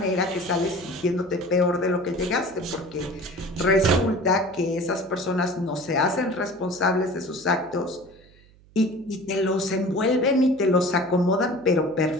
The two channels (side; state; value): right; noise; hum, 27 dB below the sound